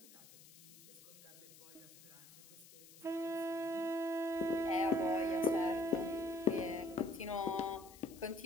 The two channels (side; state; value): left; noise; hiss, 20 dB below the sound